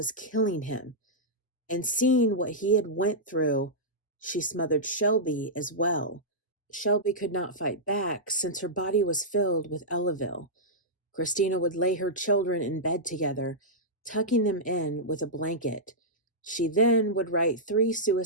killing him. And seeing what he had went through, she smothered Shelby as well. Shelby could not fight back since her body was filled with Elavil. Christina would lay her children in bed together, tucking them in with a blanket. She then would write 3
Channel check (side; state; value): both; normal; correlation -0.11